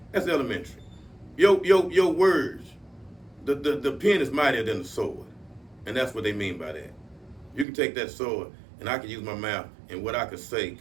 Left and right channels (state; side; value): drops out; left; at 7.7 s